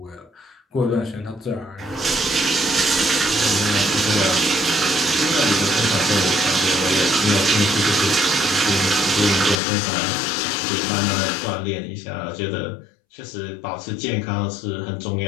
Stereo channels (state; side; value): drops out; right; at 9.6 s